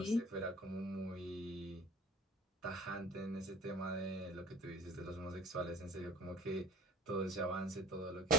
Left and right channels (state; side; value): normal; both; correlation 0.47